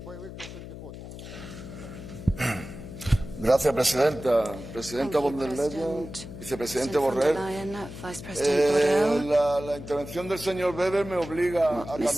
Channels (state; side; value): noise; left; hum, 12 dB below the sound